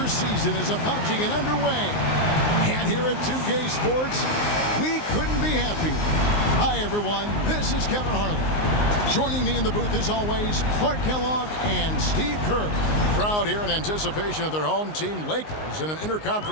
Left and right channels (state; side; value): late; right; 19 ms